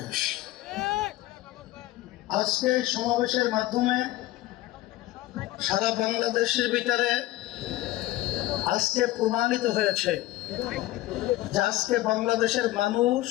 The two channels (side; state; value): right; quieter; 16.8 dB